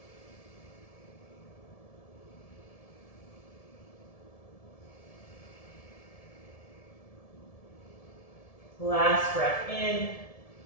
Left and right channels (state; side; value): late; right; 1.7 ms